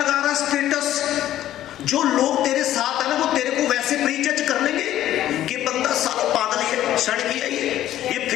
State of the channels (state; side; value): quieter; right; 12.8 dB